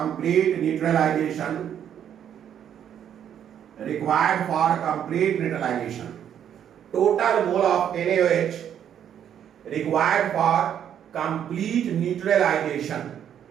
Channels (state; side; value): quieter; left; 9.4 dB